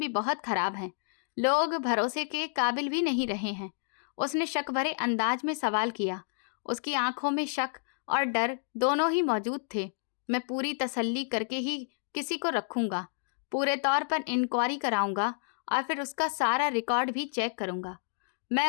बहुत खराब हैं। लोग भरोसे के काबिल भी नहीं रहे हैं। उसने शक भरे अंदाज में सवाल किया। उसकी आंखों में शक और डर दोनों ही मौजूद थे। मैं पूरी तसल्ली करके ही किसी को रखूंगा। पूरे तौर पर इंक्वायरी कराऊंगा और फिर उसका सारा रिकॉर्ड भी चेक करूंगा। मैं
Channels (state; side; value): silent; right; digital silence